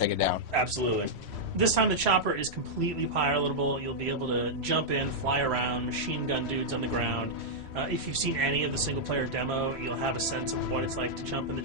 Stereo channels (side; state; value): left; late; 3.1 ms